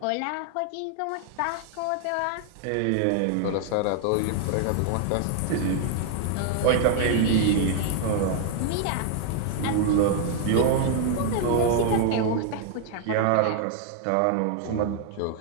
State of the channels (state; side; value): different; both; correlation 0.00